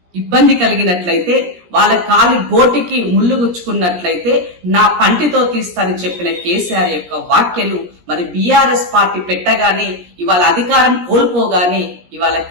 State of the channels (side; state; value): left; late; 17 ms